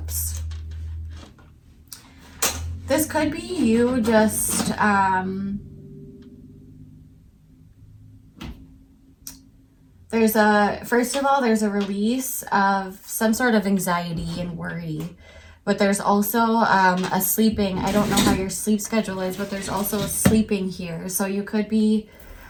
This could be you just, first of all, there's a release of some sort of anxiety and worry. But there's also a sleeping. I don't know how your sleep schedule is, but there's also a sleeping here. So you could be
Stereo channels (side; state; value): both; identical; correlation 1.00